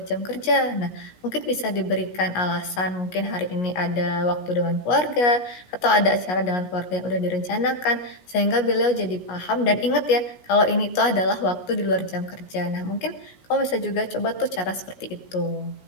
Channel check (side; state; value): right; late; 17 ms